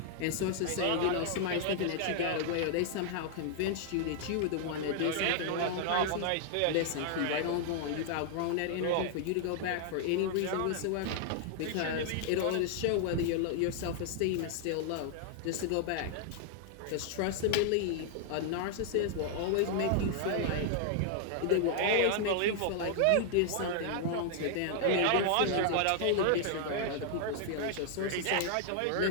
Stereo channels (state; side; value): different; both; correlation 0.00